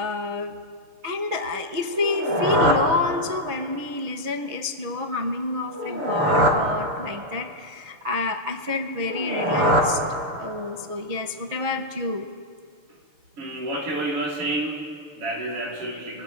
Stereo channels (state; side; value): late; left; 6.2 ms